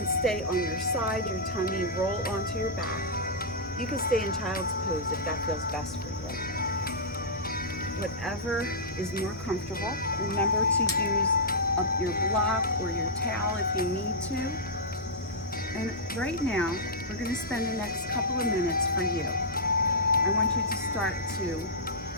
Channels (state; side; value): normal; both; correlation -0.11